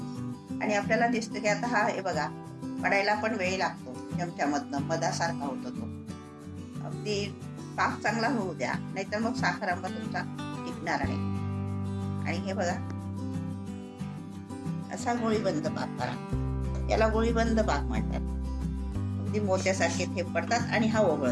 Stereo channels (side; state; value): both; identical; correlation 1.00